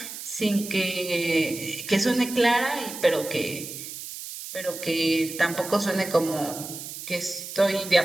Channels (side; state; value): right; noise; hiss, 10 dB below the sound